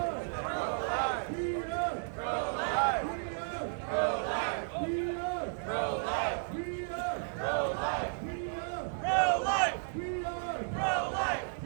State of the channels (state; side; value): silent; left; digital silence